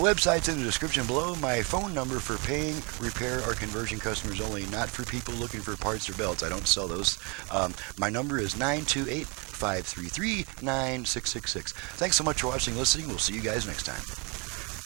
in the description below. My phone number for paying, repair, or conversion customers only, not for people looking for parts or belts. I don't sell those. My number is 928-533-9666. Thanks so much for watching and listening. We'll see you guys next time.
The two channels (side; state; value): left; quieter; 31.8 dB